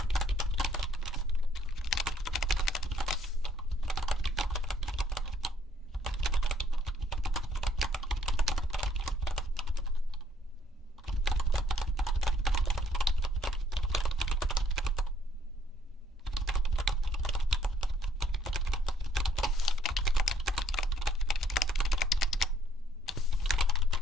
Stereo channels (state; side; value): normal; both; correlation 0.66